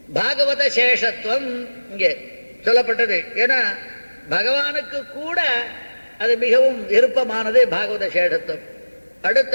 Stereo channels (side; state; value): both; inverted; correlation -1.00